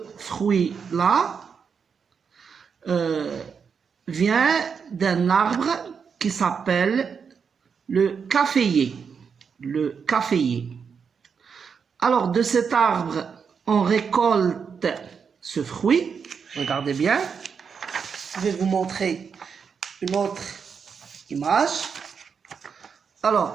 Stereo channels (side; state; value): left; quieter; 6.3 dB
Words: fruit-là vient d'un arbre qui s'appelle le caféier. Le caféier. Alors, de cet arbre, on récolte ce fruit. Regardez bien. Je vais vous montrer une autre image.